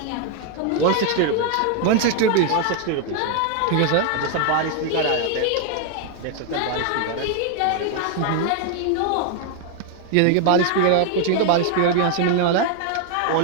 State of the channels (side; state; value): both; different; correlation 0.00